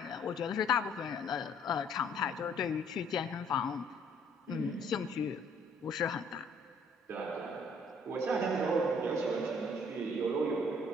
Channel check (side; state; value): both; normal; correlation 0.61